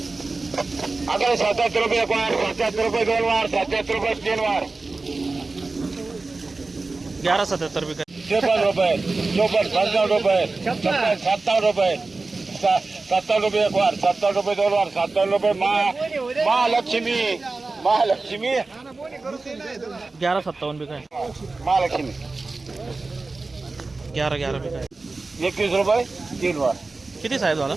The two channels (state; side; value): quieter; left; 3.6 dB